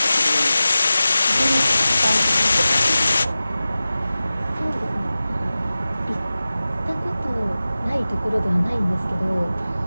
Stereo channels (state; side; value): inverted; both; correlation -0.95